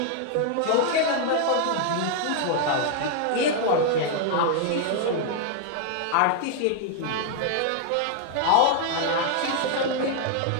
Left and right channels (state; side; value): different; both; correlation 0.00